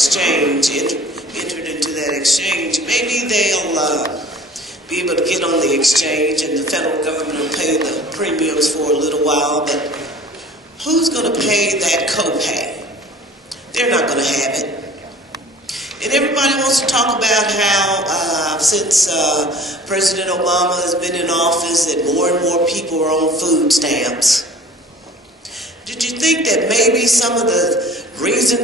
entered into that exchange, maybe they'll be able to get on the exchange and the federal government will pay the premiums for a little while, but who's going to pay that copay? They're not going to have it. And everybody wants to talk about how since President Obama has been in office that more and more people are on food stamps. Did you think that maybe some of the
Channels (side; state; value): both; normal; correlation 0.46